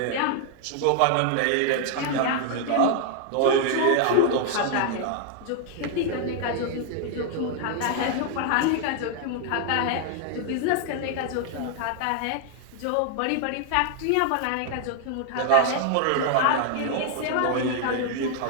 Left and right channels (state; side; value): different; both; correlation 0.00